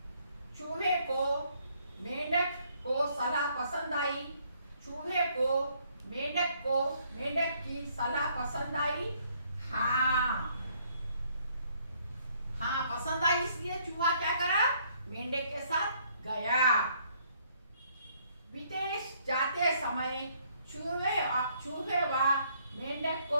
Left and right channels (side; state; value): both; inverted; correlation -0.67